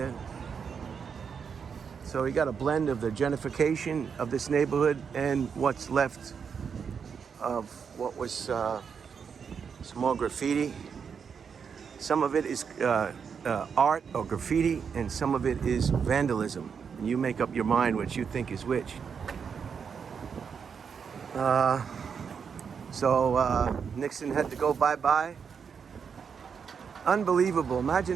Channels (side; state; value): left; quieter; 6.5 dB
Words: So we got a blend of the gentrification of this neighborhood and what's left of what was some more graffiti. Some of it is art or graffiti, and some of it is vandalism. And you make up your mind what you think is which. So Nixon had to go bye-bye. Unbelievable.